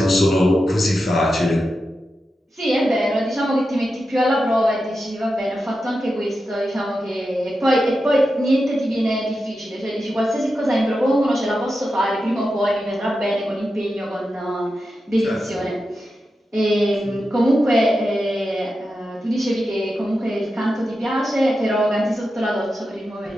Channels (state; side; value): normal; both; correlation 0.90